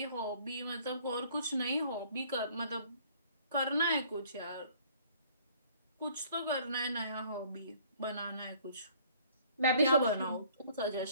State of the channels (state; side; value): inverted; both; correlation -0.57